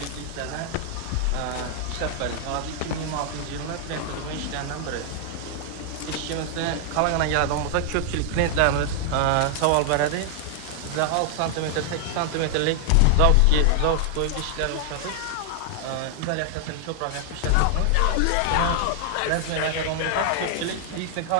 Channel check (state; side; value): different; both; correlation 0.00